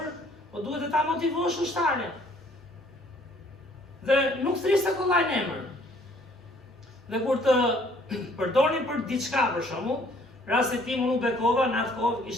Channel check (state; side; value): normal; both; correlation 0.60